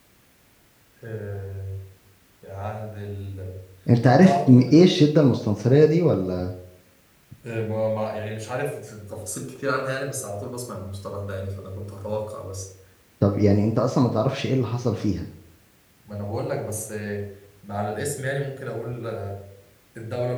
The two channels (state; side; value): identical; both; correlation 1.00